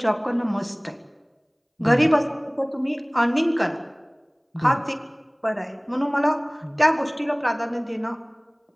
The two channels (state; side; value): identical; both; correlation 1.00